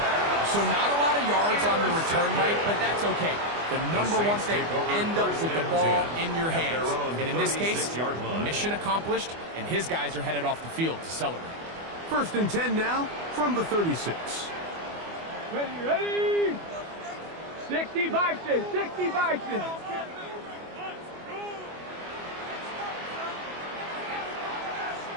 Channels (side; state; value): left; late; 24 ms